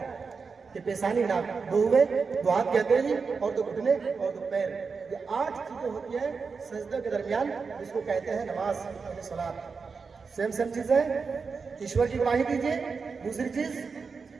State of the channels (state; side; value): quieter; left; 5.0 dB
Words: कि पेशानी, नाक, 2 हुए, 2 हाथ कहते हैं, और 2 घुटने और 2 पैर। ये 8 चीजें होती है सजदे के दरमियान, जिसको कहते हैं नमाज, सलात। सेम चीज है। ईश्वर की गवाही दीजिए, दूसरी चीज